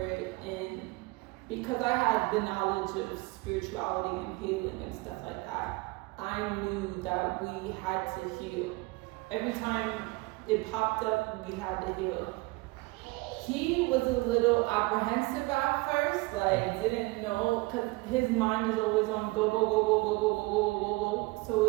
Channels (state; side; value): quieter; left; 23.7 dB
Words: in, because I had the knowledge of spirituality and healing and stuff like that, I knew that we had to heal. Every time it popped up, we had to heal. He was a little apprehensive at first, like didn't know, because his mind is always on go. So it